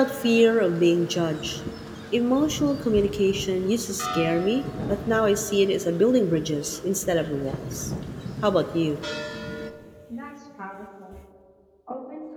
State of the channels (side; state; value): both; identical; correlation 1.00